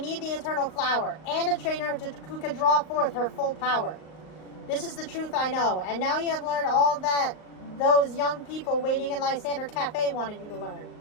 the Eternal Flower, and a trainer who can draw forth her full power. This is the truth I know, and now you have learned all that those young people waiting in Lysandere Cafe wanted you to learn.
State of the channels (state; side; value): late; right; 38 ms